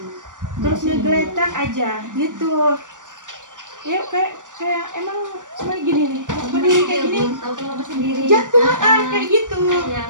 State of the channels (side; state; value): left; late; 0.87 ms